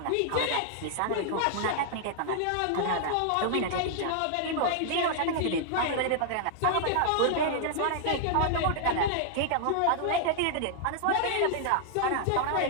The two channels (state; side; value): different; both; correlation -0.01